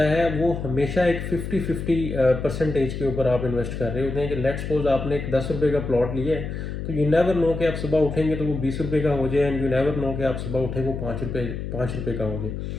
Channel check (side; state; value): left; noise; hum, 6 dB below the sound